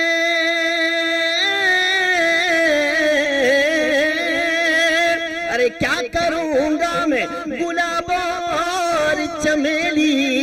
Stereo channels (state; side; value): identical; both; correlation 1.00